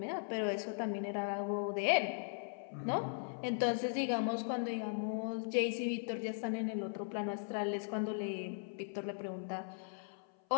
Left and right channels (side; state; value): right; silent; 52 dB below the other